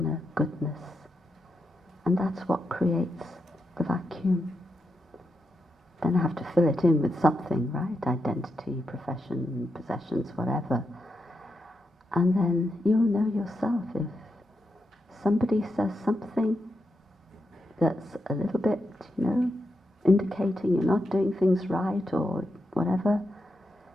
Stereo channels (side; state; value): both; normal; correlation 0.85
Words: goodness. And that's what creates the vacuum. Then I have to fill it in with something, right? Identity, profession, possessions, whatever. And then you'll know yourself if somebody says something that's a little bit, indicating you're not doing things right or whatever,